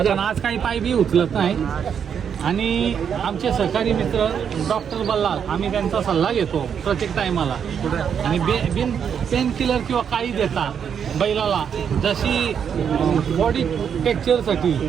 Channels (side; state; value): left; quieter; 7.7 dB